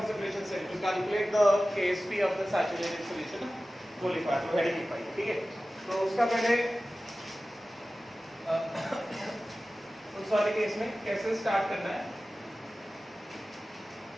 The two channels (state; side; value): normal; both; correlation 0.96